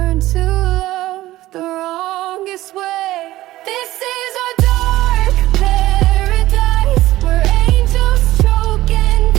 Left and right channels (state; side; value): quieter; left; 16.2 dB